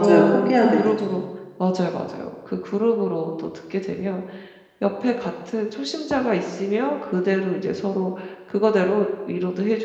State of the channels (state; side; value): identical; both; correlation 1.00